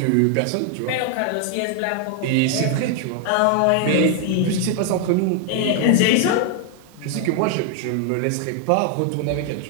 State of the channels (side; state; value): both; different; correlation 0.00